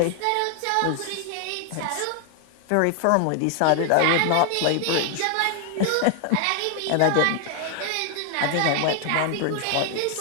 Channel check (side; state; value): both; different; correlation 0.00